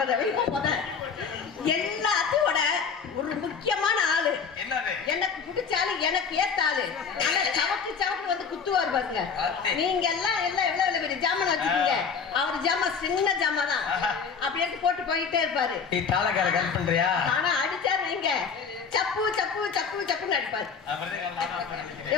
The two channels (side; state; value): right; quieter; 5.9 dB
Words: வர வைப்பா போத. எல்லாத்தோட ஒரு முக்கியமான ஆளு என்னது? எனக்கு பிடிச்சாலு எனக்கு ஏத்தாளு. ஆனா சவக்கு சவக்கு வந்து குத்துவார் பாருங்க. நீங்க எல்லாம் எவ்வளவு பெரிய ஜாமான் வச்சுக்கீங்க, அவர் ஜாமான் சின்ன ஜாமான் தான். அப்படி எடுத்து போட்டு போயிட்டே இருப்பாரு. நீ தாளக்கார கல் பண்றியா? ஆனா அடிச்சாரு நீங்க சப்பு சப்பு சப்பு சப்புன்னு அடிப்பாரு.